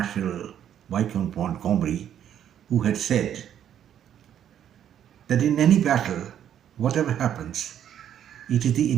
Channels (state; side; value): quieter; left; 10.0 dB